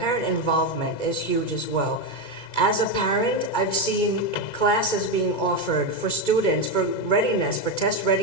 involvement is huge as well. As a parent, I've seen classes being offered for students for readiness, for test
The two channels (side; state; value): right; late; 2.2 ms